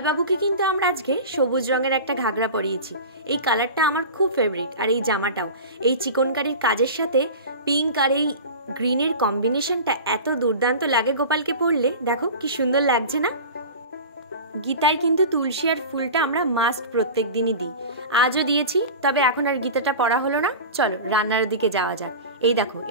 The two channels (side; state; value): both; inverted; correlation -0.33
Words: বাবুকে কিন্তু আমরা আজকে সবুজ রঙের একটা ঘাগরা পরিয়েছি। এই কালারটা আমার খুব ফেভারিট, আর এই জামাটাও এই চিকনকারির কাজের সাথে পিঙ্ক আর এই গ্রিনের কম্বিনেশনটা এত দুর্দান্ত লাগে গোপালকে পরলে। দেখো কি সুন্দর লাগছে না। গীতায় কিন্তু তুলসী আর ফুলটা আমরা মাস্ট প্রত্যেক দিনই দিই। আজও দিয়েছি, তবে এখন আর গীতাটা পড়া হলো না। চলো রান্নার দিকে যাওয়া যাক। এই দেখো,